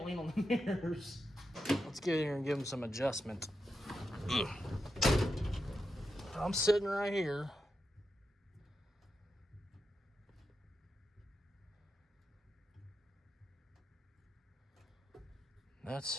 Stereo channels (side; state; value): both; normal; correlation 0.87